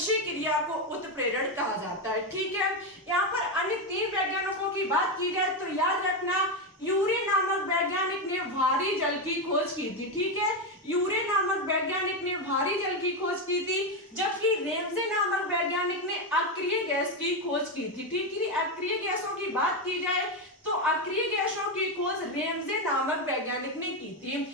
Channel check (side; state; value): both; normal; correlation 0.09